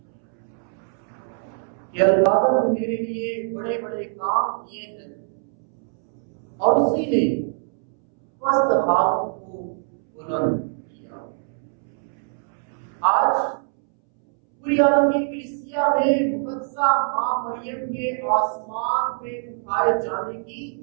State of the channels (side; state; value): left; silent; 63 dB below the other